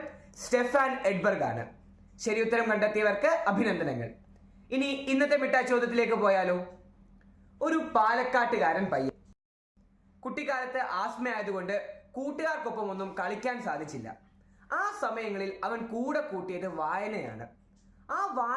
സ്റ്റെഫാൻ എഡ്ബർഗ് ആണ്. ശരി ഉത്തരം കണ്ടെത്തിയവർക്ക് അഭിനന്ദനങ്ങൾ. ഇനി ഇന്നത്തെ മിഠായി ചോദ്യത്തിലേക്ക് പോയാലോ. ഒരു പാലക്കാട്ടുകാരൻ പയ്യൻ. കുട്ടിക്കാലത്ത് ആസ്മയായതുകൊണ്ട് കൂട്ടുകാർക്കൊപ്പം ഒന്നും കളിക്കാൻ സാധിച്ചില്ല. ആ സമയങ്ങളിൽ അവൻ കൂടെ കൂട്ടിയത് വായനയാണ്. ആ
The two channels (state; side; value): identical; both; correlation 1.00